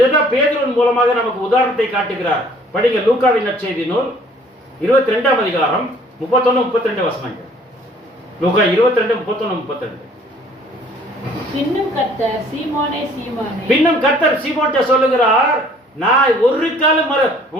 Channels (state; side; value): normal; both; correlation 0.56